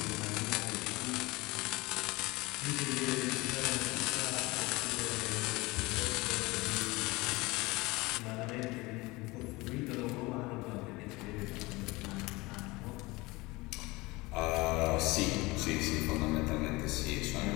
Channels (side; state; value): right; quieter; 22.6 dB